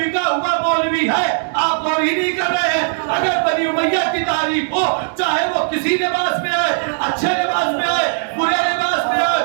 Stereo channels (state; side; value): silent; left; digital silence